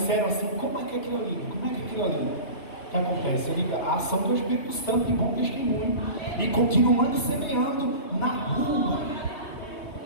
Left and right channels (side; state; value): right; late; 3.2 ms